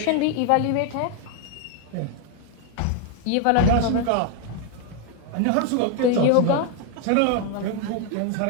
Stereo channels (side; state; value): both; different; correlation 0.01